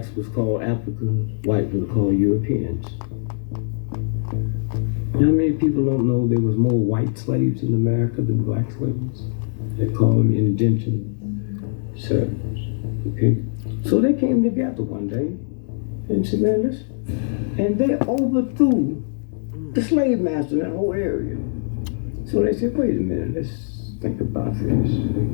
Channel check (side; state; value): right; silent; digital silence